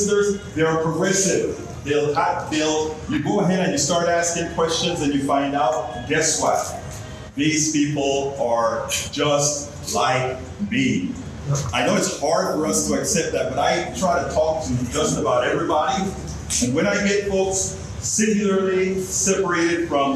they are progressive. You go ahead and you start asking questions and you find out, guess what? These people are just like me. I know it's hard for us to accept that, but I try to talk to just about everybody. And when I get folks singularly separated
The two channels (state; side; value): identical; both; correlation 1.00